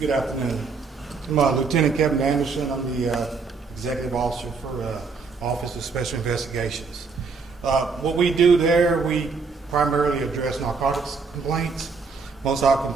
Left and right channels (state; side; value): quieter; left; 4.7 dB